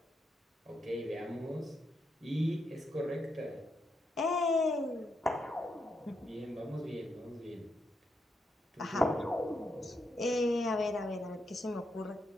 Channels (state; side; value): normal; both; correlation 0.82